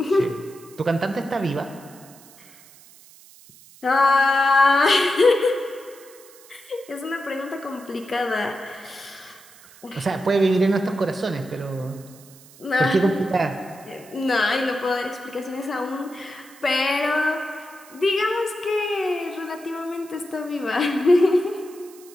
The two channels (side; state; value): right; noise; hiss, 23 dB below the sound